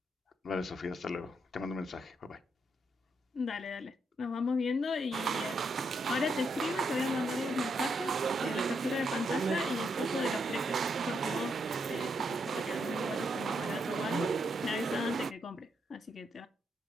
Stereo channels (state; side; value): normal; both; correlation 0.79